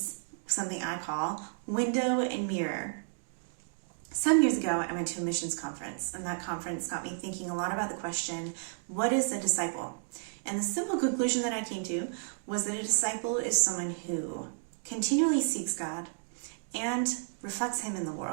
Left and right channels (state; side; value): silent; left; digital silence